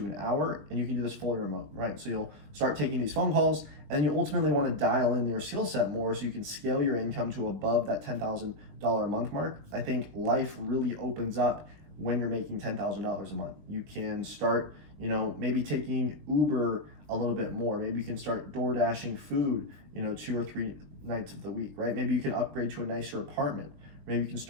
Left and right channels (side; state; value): left; late; 20 ms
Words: an hour, and you can do this fully remote, right? So you'll start taking these phone calls, and you ultimately want to dial in your skill set more so you can scale your income to above that $10,000 a month mark. I think life really opens up when you're making $10,000 a month. You can start, maybe taking Uber a little bit more. Maybe you can start door dashing food, 2 or 3 nights of the week, right? Maybe you can upgrade to a nicer apartment. Maybe you can